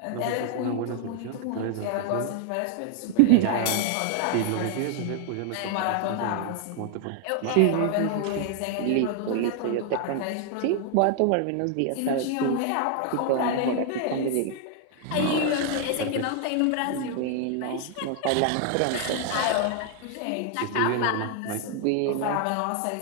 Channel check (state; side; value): different; both; correlation 0.00